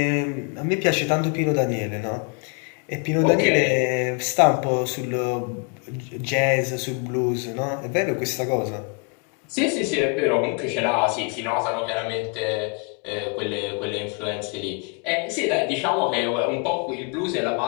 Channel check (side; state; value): right; quieter; 36.6 dB